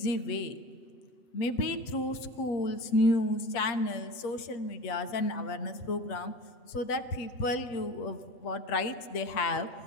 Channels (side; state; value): right; late; 8.0 ms